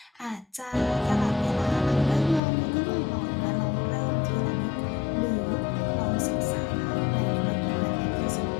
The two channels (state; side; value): drops out; right; at 2.4 s